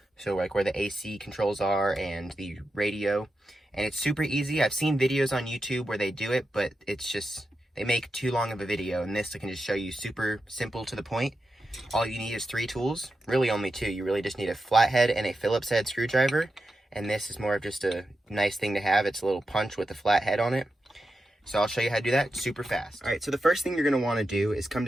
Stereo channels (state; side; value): normal; both; correlation 0.89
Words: So like where the AC controls are and the radio. And it's super easy. I've seen videos on YouTube where they do it, but it's just, they make too long of a video. And this I can just show you super simple to the point. All you need is 3 tools, really only 2. You really just need a flathead and a Phillips head screwdriver. And this is more of just a nice thing to have. It's a little punch with a flat head on it. So I'll show you how to do that super fast. All right, so the first thing you're gonna wanna do is come